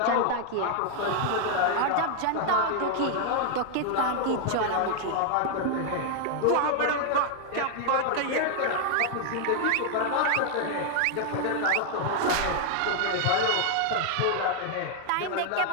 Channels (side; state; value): both; different; correlation 0.00